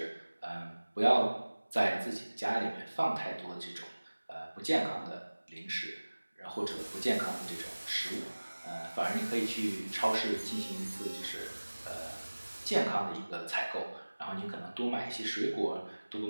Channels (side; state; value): both; inverted; correlation -1.00